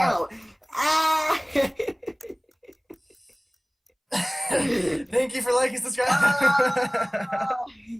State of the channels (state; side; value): identical; both; correlation 1.00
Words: out. Ah! Thank you for liking, subscribing. Ah!